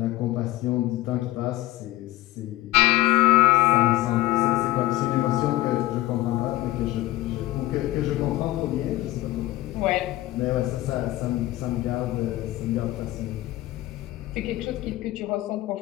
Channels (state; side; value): quieter; right; 17.0 dB